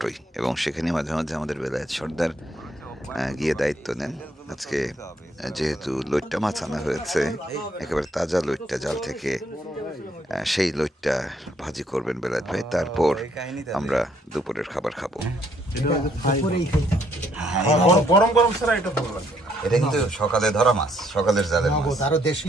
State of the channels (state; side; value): normal; both; correlation 0.69